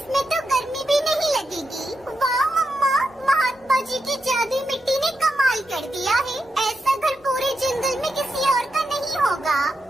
तो गर्मी भी नहीं लगेगी। वाह मम्मा, महात्मा जी की जादुई मिट्टी ने कमाल कर दिया है। ऐसा घर पूरे जंगल में किसी और का नहीं होगा।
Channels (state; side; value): normal; both; correlation 0.86